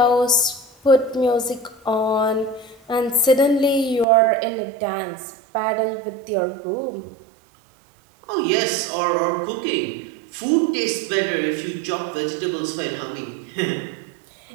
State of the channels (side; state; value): left; drops out; at 4.0 s